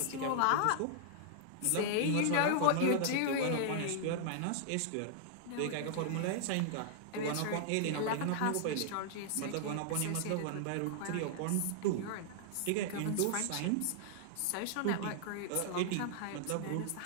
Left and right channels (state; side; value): different; both; correlation -0.01